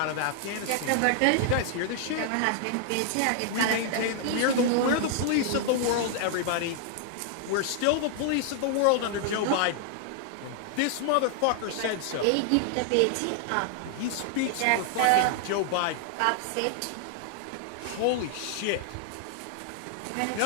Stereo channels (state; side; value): different; both; correlation 0.00